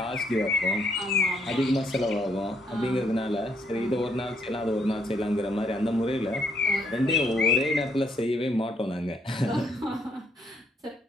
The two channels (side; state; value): both; normal; correlation 0.71